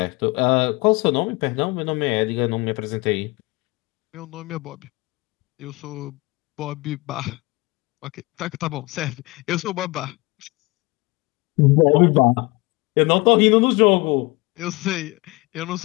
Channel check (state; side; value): quieter; right; 23.9 dB